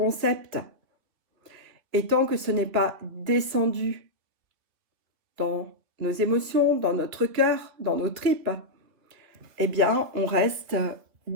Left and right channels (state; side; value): late; left; 2.9 ms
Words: Et tant que ce n'est pas descendu dans nos émotions, dans notre cœur, dans nos tripes, eh bien, on reste